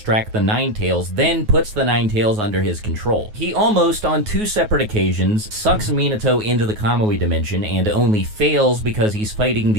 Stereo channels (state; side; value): late; left; 9.4 ms